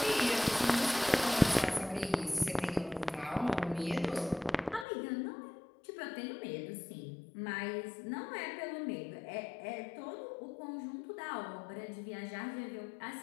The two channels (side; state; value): right; drops out; at 4.9 s